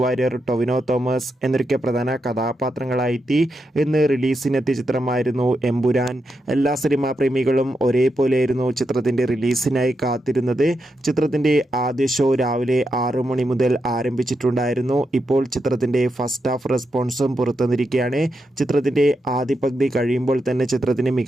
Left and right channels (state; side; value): normal; both; correlation 0.85